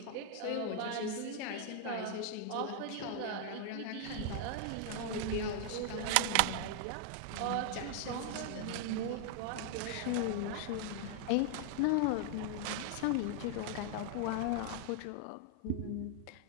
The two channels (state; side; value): different; both; correlation 0.00